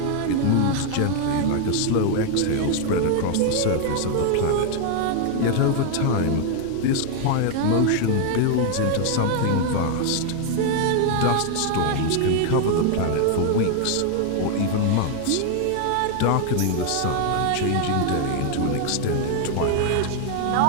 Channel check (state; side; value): different; both; correlation 0.00